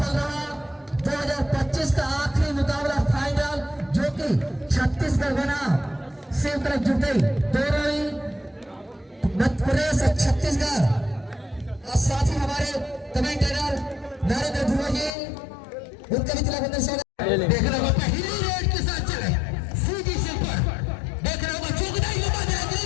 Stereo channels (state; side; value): drops out; right; at 15.1 s